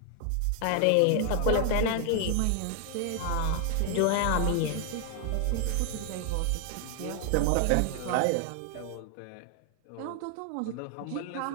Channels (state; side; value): different; both; correlation 0.00